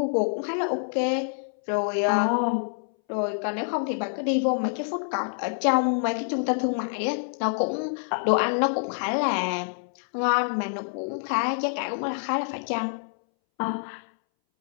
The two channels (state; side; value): silent; right; 60 dB below the other